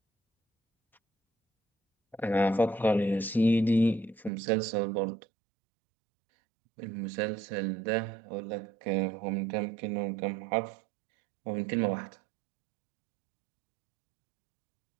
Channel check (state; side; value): drops out; left; at 4.3 s